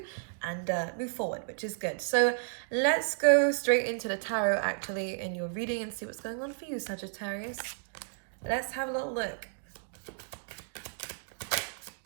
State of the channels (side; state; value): left; silent; digital silence